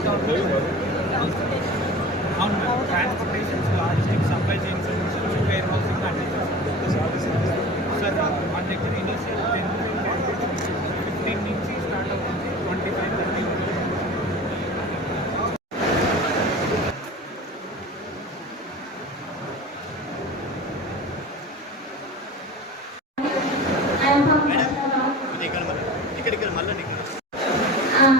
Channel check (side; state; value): both; normal; correlation 0.35